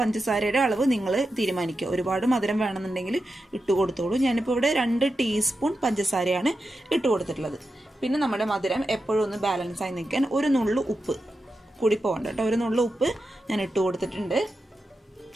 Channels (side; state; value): both; normal; correlation 0.89